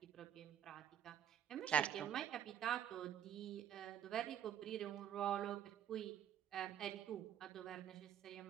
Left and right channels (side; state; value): left; quieter; 10.1 dB